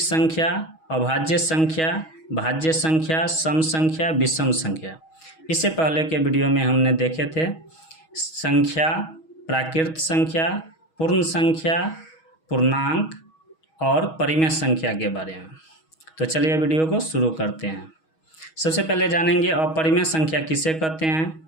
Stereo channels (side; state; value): right; late; 6.3 ms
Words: संख्या, अभाज्य संख्या, भाज्य संख्या, सम संख्या, विषम संख्या। इससे पहले के वीडियो में हमने देखे थे संख्या, प्राकृत संख्या, पूर्ण संख्या, पूर्णांक और परिमेय संख्या के बारे में। तो चलिए वीडियो को शुरू करते हैं। सबसे पहले जानेंगे अपरिमेय संख्या किसे कहते हैं।